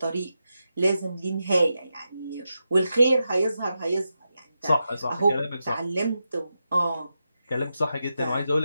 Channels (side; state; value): both; inverted; correlation -0.88